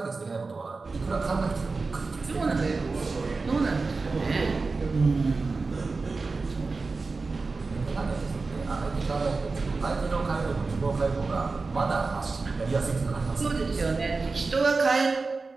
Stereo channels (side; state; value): left; quieter; 4.0 dB